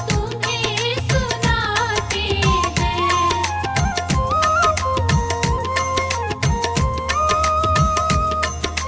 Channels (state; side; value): identical; both; correlation 1.00